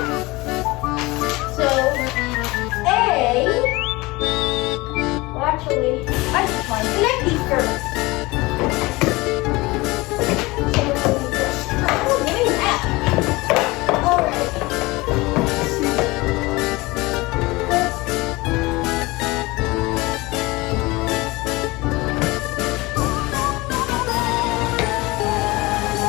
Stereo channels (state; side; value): quieter; right; 22.3 dB